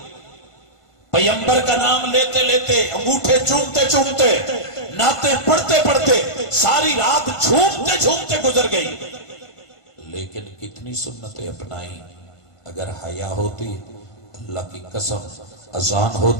پیغمبر کا نام لیتے لیتے انگوٹھے چومتے چومتے نعتیں پڑھتے پڑھتے ساری رات جھومتے جھومتے گزر گئی, لیکن کتنی سنتیں اپنائیں. اگر حیا ہوتی اللہ کی قسم اذان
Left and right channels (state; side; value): late; right; 1.5 ms